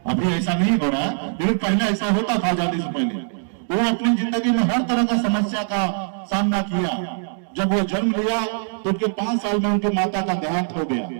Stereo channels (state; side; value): silent; left; digital silence